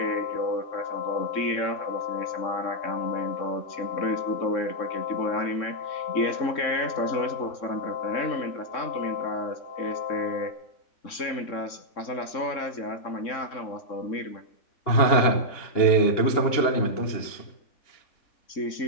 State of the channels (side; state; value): right; late; 3.7 ms